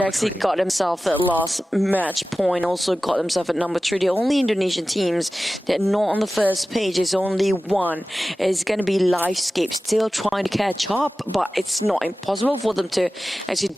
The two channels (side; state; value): both; normal; correlation 0.95